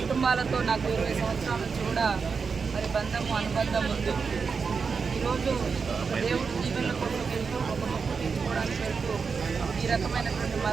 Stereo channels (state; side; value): quieter; left; 5.3 dB